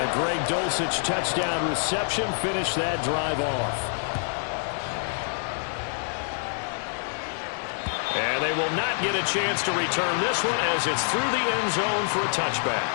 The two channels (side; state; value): right; silent; 61 dB below the other